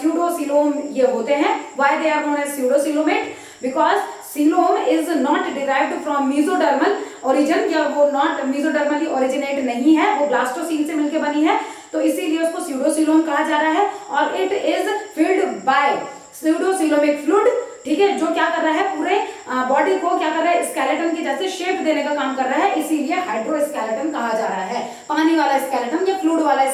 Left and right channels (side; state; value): both; identical; correlation 1.00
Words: स्यूडो सीलोम ये होते हैं। Why they are known as pseudo coelomate, because coelom is not derived from mesodermal origin, या वो नॉट मेसोडर्मली ओरिजिनेट नहीं है, वो ब्लास्टोसील से मिलकर बनी है, तो इसीलिए उसको स्यूडोसीलोम कहा जा रहा है। और it is filled by pseudocoelomic fluid, ठीक है, जो क्या कर रहा है, पूरे बॉडी को क्या कर रहा है, स्केलेटन की जैसे शेप देने का काम कर रहा है, इसीलिए हाइड्रोस्केलेटन कहा जा रहा है, पानी वाला स्केलेटन या फ्लूइड वाला